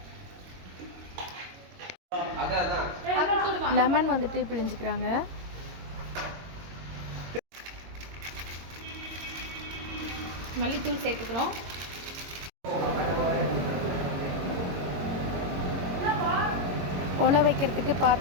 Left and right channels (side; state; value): left; late; 22 ms